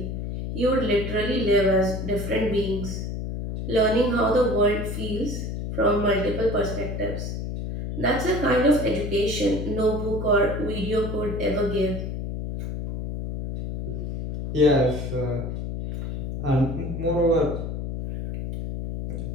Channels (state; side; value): noise; left; hum, 5 dB below the sound